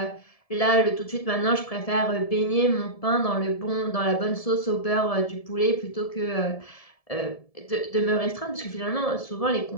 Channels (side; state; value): right; late; 1.7 ms